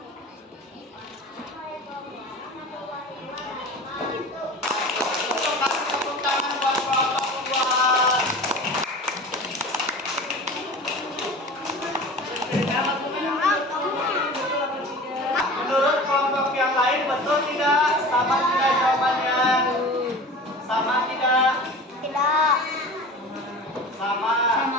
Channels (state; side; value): normal; both; correlation 0.37